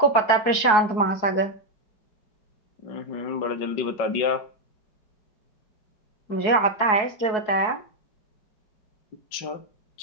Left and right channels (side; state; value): right; late; 4.7 ms